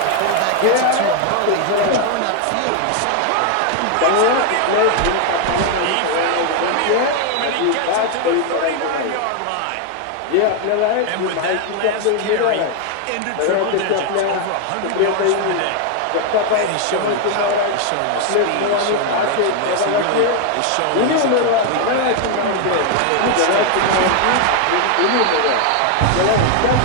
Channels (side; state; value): both; different; correlation 0.01